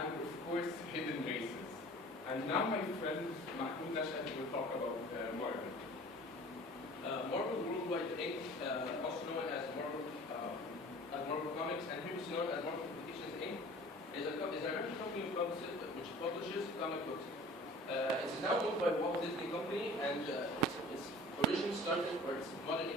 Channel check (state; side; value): normal; both; correlation 0.44